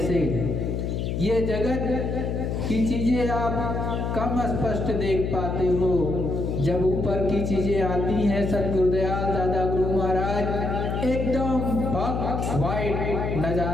ये जगत की चीजें आप कम स्पष्ट देख पाते हो, जब ऊपर की चीजें आती हैं सतगुरुदयाल दादा गुरु महाराज एकदम वाइट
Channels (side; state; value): left; noise; hum, 1 dB below the sound